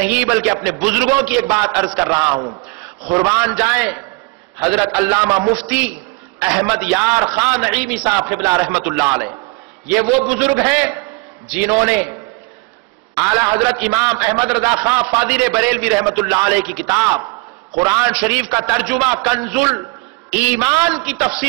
بلکہ اپنے بزرگوں کی ایک بات عرض کر رہا ہوں, قربان جائیں حضرت علامہ مفتی احمد یار خان نعیمی صاحب قبلہ رحمت اللہ علیہ. یہ وہ بزرگ ہیں جنہوں نے اعلی حضرت امام احمد رضا خان فاضل بریلوی رحمت اللہ علیہ کی کتاب قرآن شریف کا ترجمہ کنز ایمان کی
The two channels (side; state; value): left; quieter; 27.2 dB